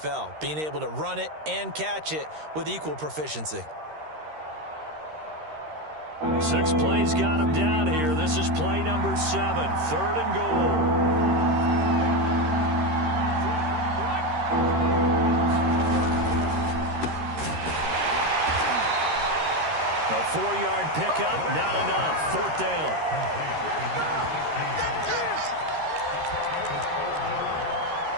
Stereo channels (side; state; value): left; late; 13 ms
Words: being able to run it and catch it with equal proficiency. 6 plays got him down here. This is play number 7, 3rd and goal. A 4-yard pickup, not enough. 4th down.